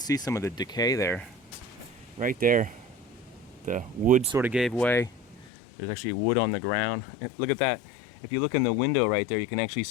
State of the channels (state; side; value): drops out; right; at 5.5 s